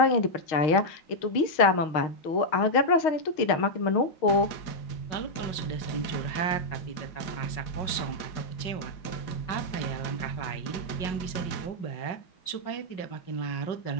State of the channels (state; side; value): late; right; 6.4 ms